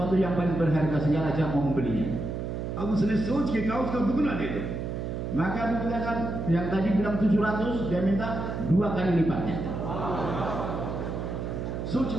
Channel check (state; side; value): noise; right; hum, 4 dB below the sound